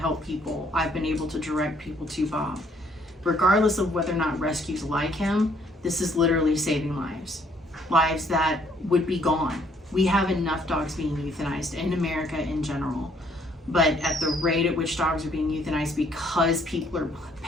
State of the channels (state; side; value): normal; both; correlation 0.65